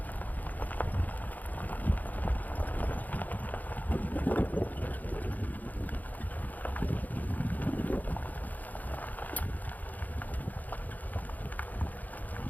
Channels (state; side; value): late; right; 0.081 ms